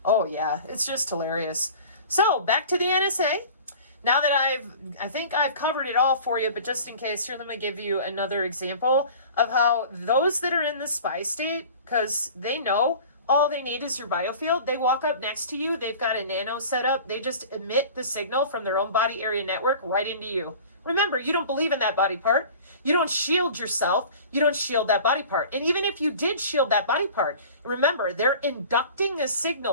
Oh yeah, it's just hilarious. So, back to the NSA. Now that I think I've covered it all for you, but just in case, here, let me give you another example of how those that are in the spy state, because they know all they need is your biofield. They walk up next to you. They've got a nano set up. They just emit the signal from their own body area network right into you. Remember, you don't believe in that body part. You don't shield yourself. You don't shield that body part. And even if you did shield that body part, remember, they're inducting a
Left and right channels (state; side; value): inverted; both; correlation -0.42